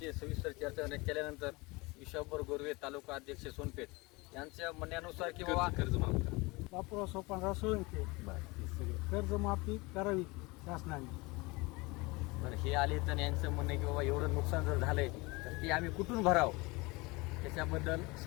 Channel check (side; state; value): right; quieter; 24.5 dB